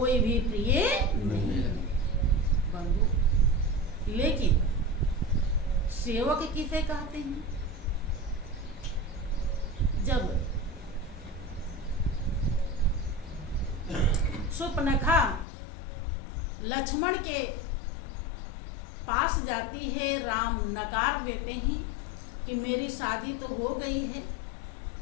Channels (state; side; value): drops out; right; at 15.5 s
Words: भी प्रिय नहीं है बंधु। लेकिन सेवक किसे कहते हैं? जब सुपनखा लक्ष्मण के पास जाती है, राम नकार देते हैं कि मेरी शादी तो हो गई है,